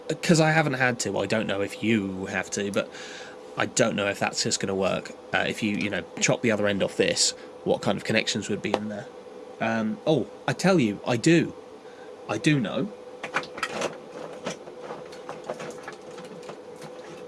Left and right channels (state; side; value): identical; both; correlation 1.00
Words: Because I haven't had to, I don't know if you have to, but I don't know if that's just going to work. If you know, chop the other end off this, what kind of connections would be in there? Oh, I tell you, I do know.